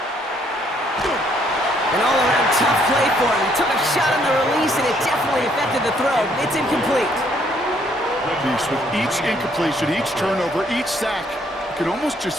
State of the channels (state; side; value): normal; both; correlation 0.67